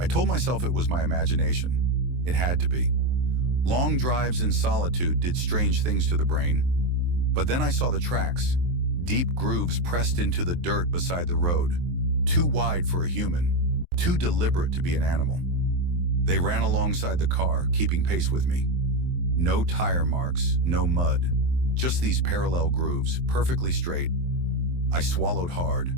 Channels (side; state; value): left; late; 23 ms